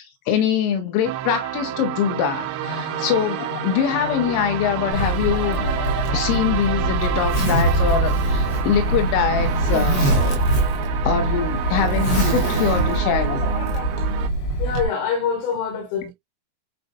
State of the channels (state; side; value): late; right; 22 ms